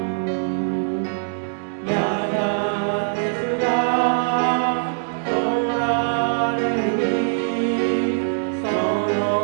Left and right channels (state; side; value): silent; left; digital silence